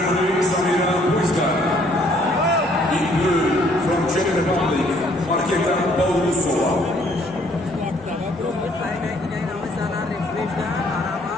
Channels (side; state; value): both; normal; correlation 0.63